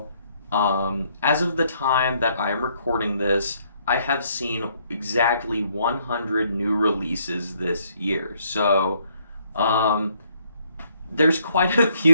as of the time that I am recording this, I have seen exactly 100 new releases this year. So, um, there's quite a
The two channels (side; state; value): both; inverted; correlation -0.69